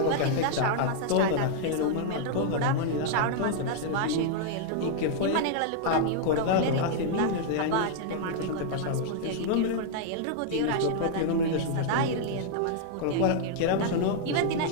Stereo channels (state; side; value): different; both; correlation -0.01